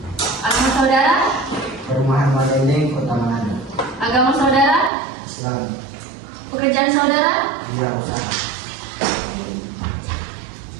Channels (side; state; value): left; drops out; at 4.9 s